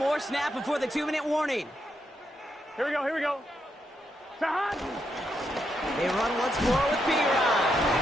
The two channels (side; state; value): both; normal; correlation 0.81